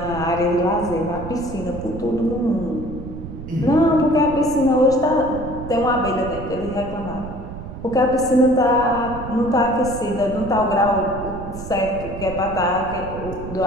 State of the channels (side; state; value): right; noise; rumble, 11 dB below the sound